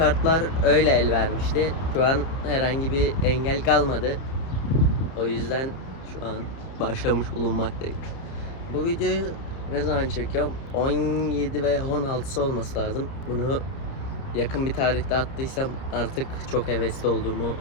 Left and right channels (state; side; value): late; right; 30 ms